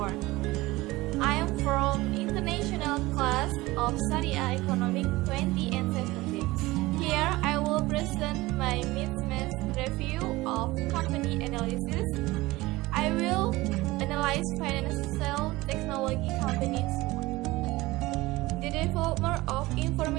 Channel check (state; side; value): quieter; left; 19.9 dB